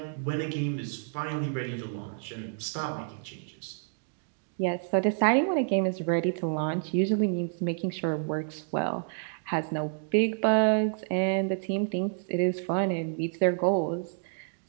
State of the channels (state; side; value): silent; left; digital silence